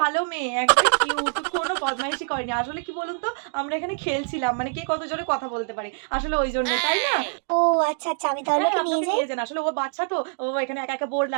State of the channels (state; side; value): silent; left; digital silence